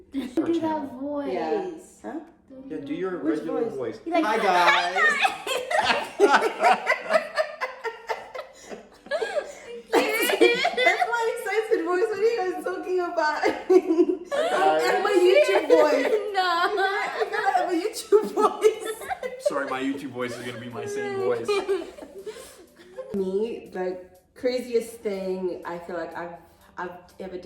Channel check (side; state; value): both; identical; correlation 1.00